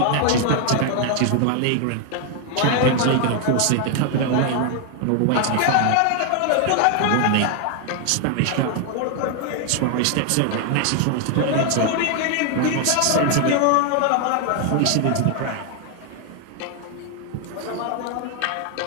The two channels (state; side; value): different; both; correlation 0.00